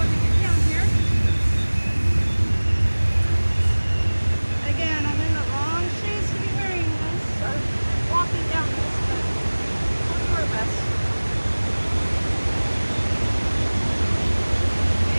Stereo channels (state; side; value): inverted; both; correlation -1.00